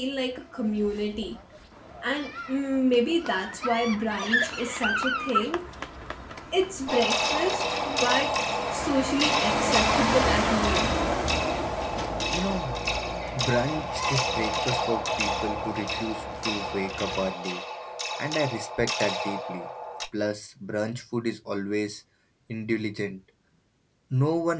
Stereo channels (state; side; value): identical; both; correlation 1.00